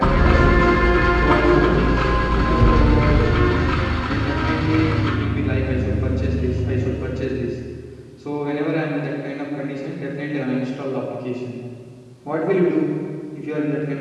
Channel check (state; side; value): identical; both; correlation 1.00